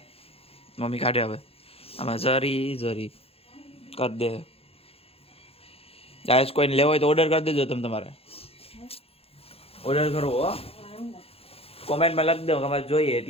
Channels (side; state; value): right; late; 0.28 ms